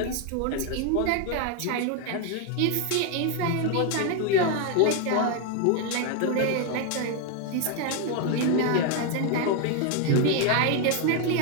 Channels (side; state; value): both; different; correlation 0.01